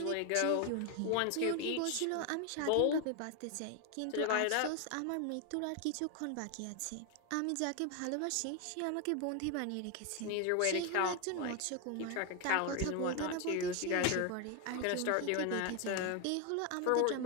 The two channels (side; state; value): both; different; correlation 0.01